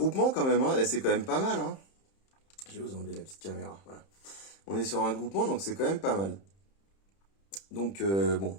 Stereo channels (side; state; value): right; late; 31 ms